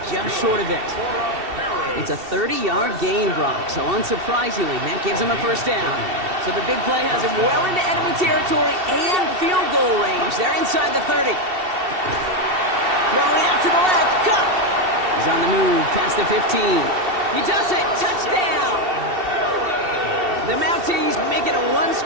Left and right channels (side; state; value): left; late; 2.7 ms